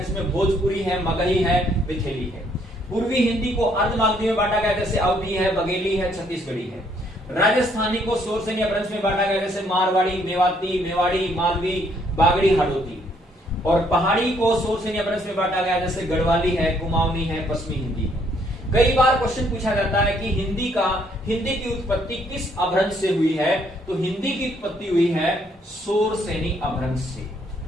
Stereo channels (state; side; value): normal; both; correlation 0.68